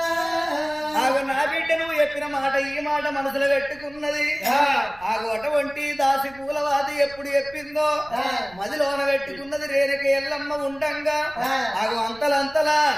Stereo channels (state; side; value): noise; right; rumble, 23 dB below the sound